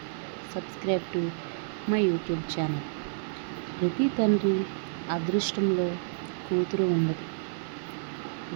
subscribe to my YouTube channel. ప్రతి తండ్రి అదృష్టంలో కూతురు ఉండదు.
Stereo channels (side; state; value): left; silent; digital silence